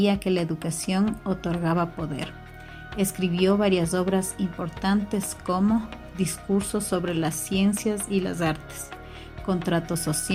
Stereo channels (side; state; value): both; identical; correlation 1.00